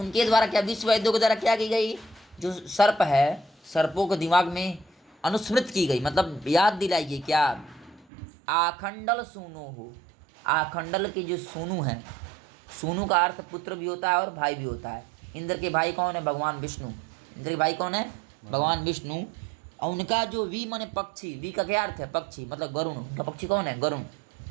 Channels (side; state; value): left; drops out; at 8.1 s